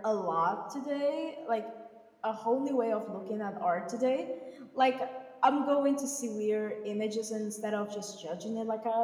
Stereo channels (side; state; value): both; identical; correlation 1.00